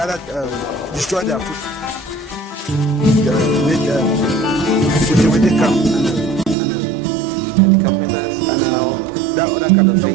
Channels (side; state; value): left; drops out; at 6.6 s